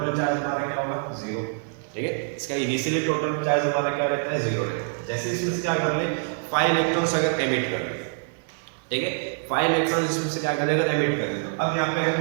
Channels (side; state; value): left; silent; digital silence